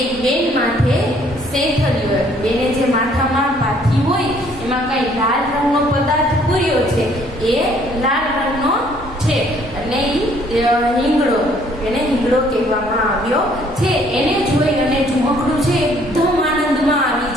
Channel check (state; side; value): normal; both; correlation 0.62